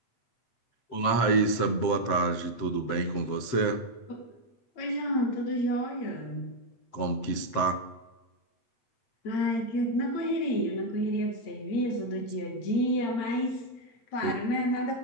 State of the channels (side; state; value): right; late; 7.8 ms